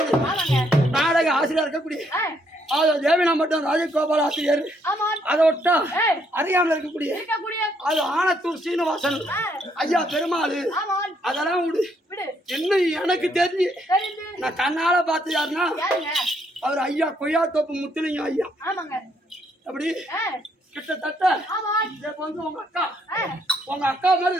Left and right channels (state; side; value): normal; both; correlation 0.71